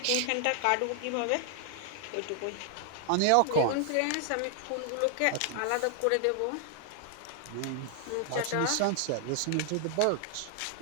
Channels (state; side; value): different; both; correlation 0.00